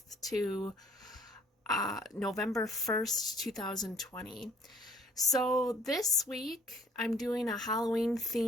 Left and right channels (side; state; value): both; normal; correlation 0.56